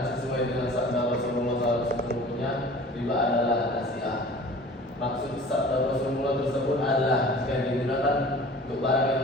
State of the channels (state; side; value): normal; both; correlation 0.44